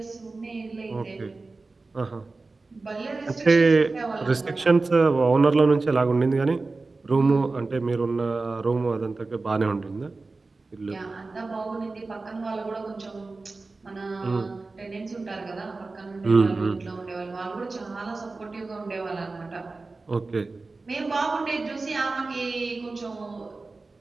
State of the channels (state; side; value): quieter; left; 3.6 dB